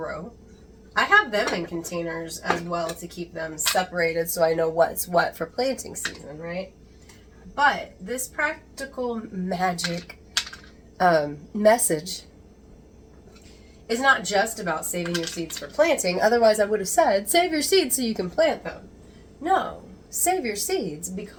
I have them in containers as well to keep them separated so I know what's what for planting season, right? But this practical magic message is not just about saving your seeds for planting. Otherwise, I would have said, save your seeds so you can plant them. No, save your seeds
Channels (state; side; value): identical; both; correlation 1.00